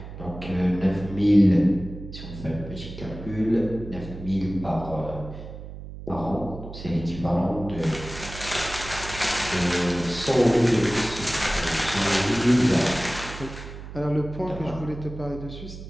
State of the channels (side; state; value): right; noise; hum, 12 dB below the sound